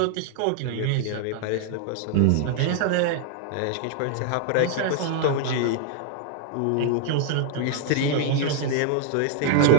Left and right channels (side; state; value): both; different; correlation 0.00